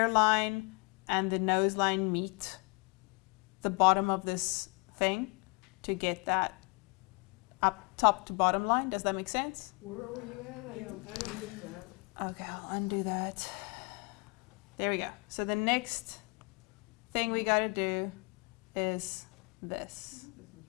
and the nose line meet the bottom of this thing to get that up top to bottom line. Does that make sense? Where were you at? I didn't get that. Okay, I'll undo that. There we go. So the next thing we gotta do is this. This was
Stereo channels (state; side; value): quieter; right; 32.2 dB